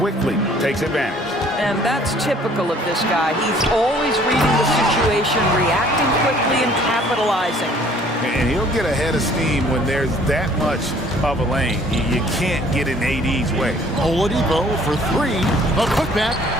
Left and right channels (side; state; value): both; normal; correlation 0.56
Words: takes advantage. And that's typical of this guy. He's always reading the situation, reacting quickly and capitalizing. And he'll get ahead of steam when there's that much of a lane. You can't get in AD's way. Oladipo for 3. A putback.